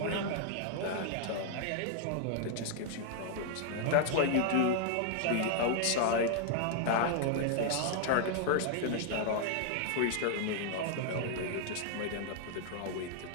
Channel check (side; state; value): both; different; correlation 0.00